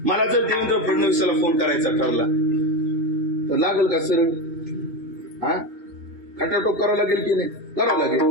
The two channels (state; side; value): late; left; 2.2 ms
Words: मला जर देवेंद्र फडणवीसाला फोन करायचा ठरला तर लागेल का सरळ? हा, खटाटोप करावं लागेल की नाही? करावं लागेल.